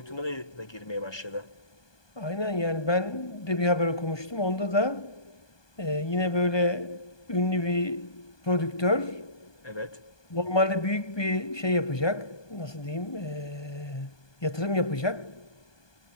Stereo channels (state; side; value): late; right; 1.2 ms